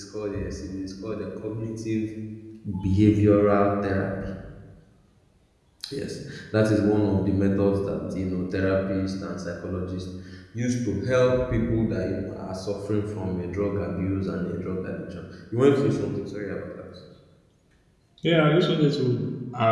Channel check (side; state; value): both; identical; correlation 1.00